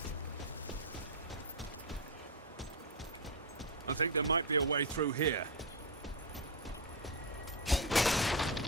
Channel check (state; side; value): normal; both; correlation 0.07